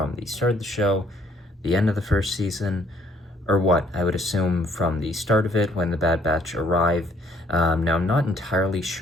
the start of the show, the end of the first season, or what. I would assume from the start of it when the Bad Batch arrive. Now I'm not entirely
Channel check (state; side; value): normal; both; correlation 0.63